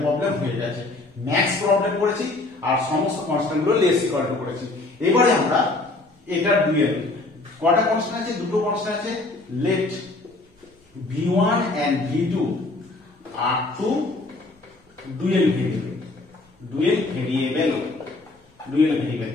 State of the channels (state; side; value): quieter; right; 3.0 dB